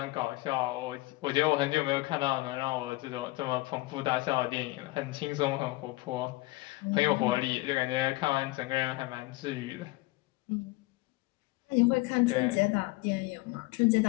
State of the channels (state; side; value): quieter; right; 21.2 dB